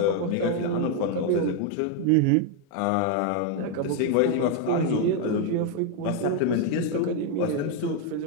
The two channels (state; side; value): different; both; correlation 0.01